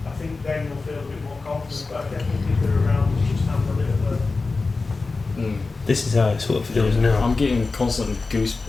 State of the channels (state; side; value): quieter; right; 3.9 dB